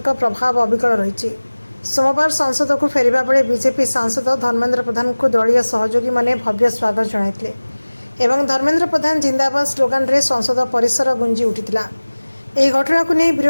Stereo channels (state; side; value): inverted; both; correlation -1.00